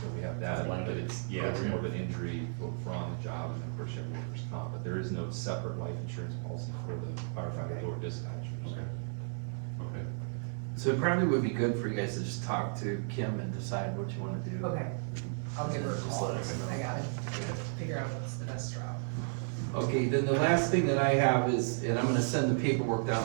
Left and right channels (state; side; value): silent; left; 55 dB below the other